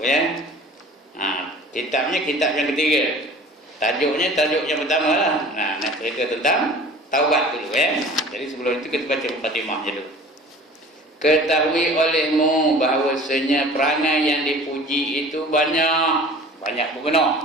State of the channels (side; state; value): both; normal; correlation 0.44